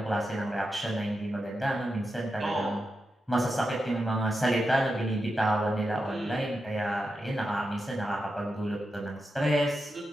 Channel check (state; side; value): normal; both; correlation 0.89